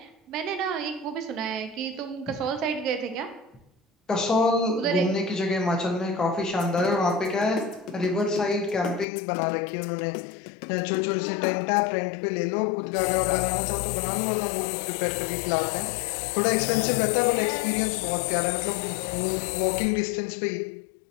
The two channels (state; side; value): drops out; right; at 9.1 s